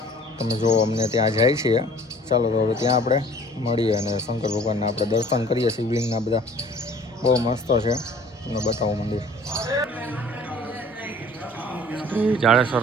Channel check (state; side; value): normal; both; correlation 0.51